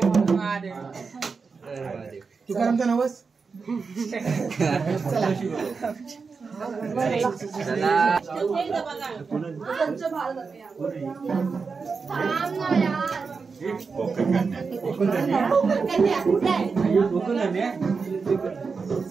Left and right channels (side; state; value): left; quieter; 4.9 dB